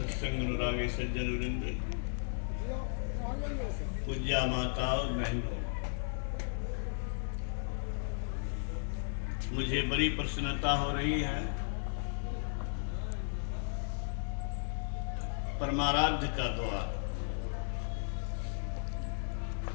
अनुरागी सज्जन वृंद, पूज्या माता और बहनों, मुझे बड़ी प्रसन्नता हो रही है। परमाराध्य का द्वार,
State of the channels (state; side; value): silent; right; digital silence